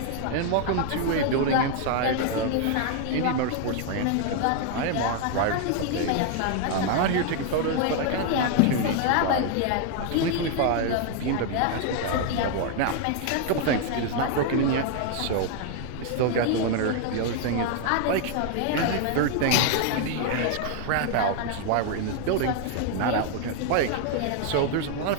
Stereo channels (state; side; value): different; both; correlation 0.00